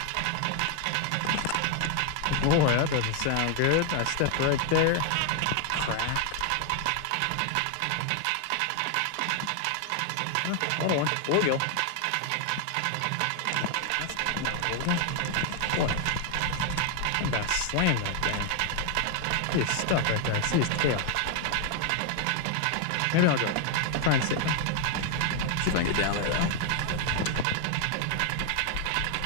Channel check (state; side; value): different; both; correlation 0.00